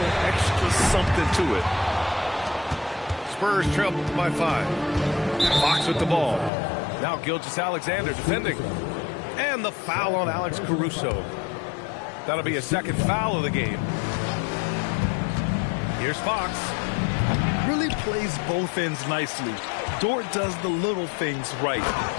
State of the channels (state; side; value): drops out; right; at 6.5 s